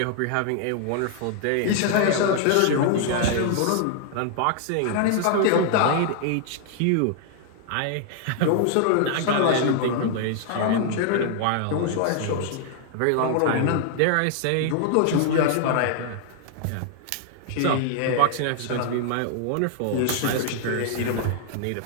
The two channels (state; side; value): different; both; correlation -0.01